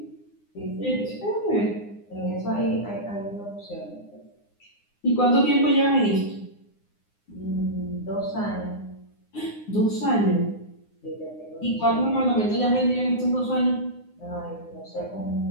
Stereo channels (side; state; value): right; late; 9.7 ms